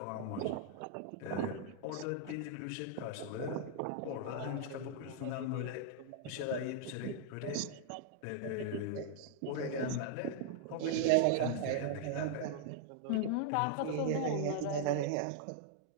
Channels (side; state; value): both; different; correlation 0.00